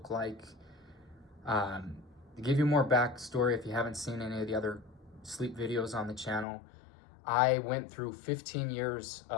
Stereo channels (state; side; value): drops out; right; at 6.5 s